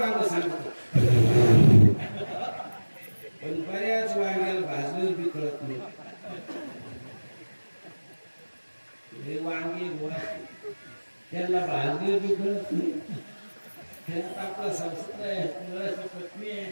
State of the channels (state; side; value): inverted; both; correlation -1.00